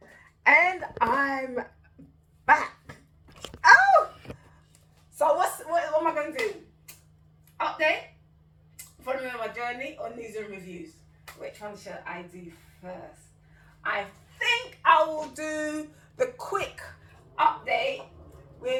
and I'm back. Oh, so what am I going to do? Update, following on my journey, or news and reviews? Which one should I do first? I think I will do the quick update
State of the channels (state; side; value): identical; both; correlation 1.00